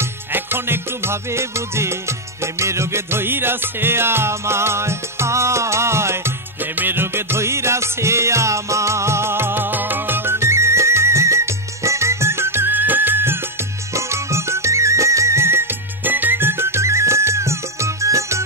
এখন একটু ভাবে বুঝি প্রেমের রোগে ধইরাছে আমায় প্রেমের রোগে ধইরাছে আমায়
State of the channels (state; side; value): normal; both; correlation 0.01